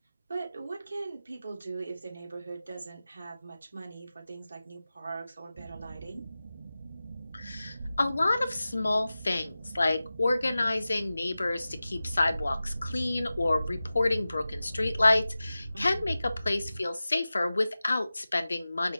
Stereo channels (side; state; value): both; inverted; correlation -0.95